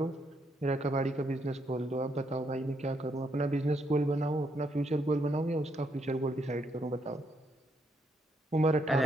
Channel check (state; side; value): normal; both; correlation 0.76